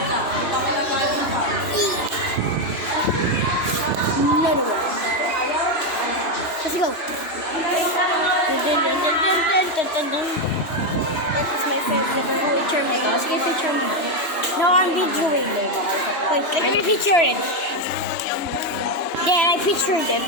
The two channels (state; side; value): late; right; 2.9 ms